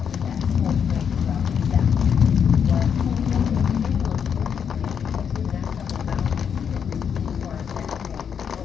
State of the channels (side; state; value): right; quieter; 7.5 dB